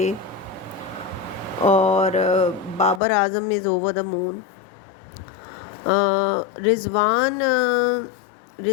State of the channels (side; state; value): right; drops out; at 3.0 s